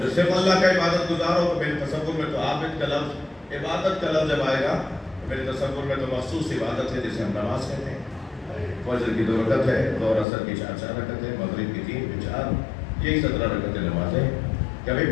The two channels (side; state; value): right; drops out; at 10.2 s